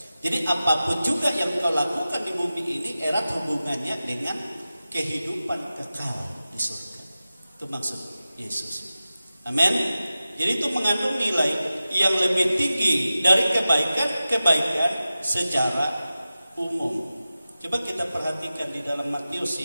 Jadi apapun juga yang kau lakukan di bumi ini erat hubungannya dengan kehidupan kekal di surga. Itu maksud Yesus. Amin. Jadi itu mengandung nilai yang lebih tinggi dari kebaikan secara umum. Coba kita perhatikan di dalam Matius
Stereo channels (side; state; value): both; inverted; correlation -0.94